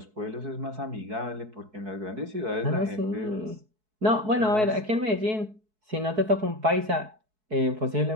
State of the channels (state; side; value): late; left; 4.6 ms